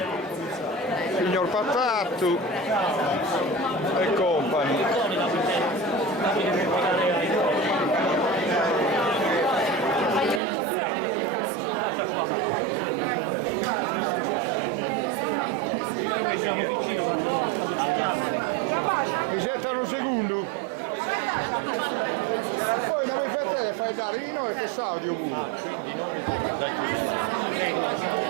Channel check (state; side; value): drops out; left; at 10.4 s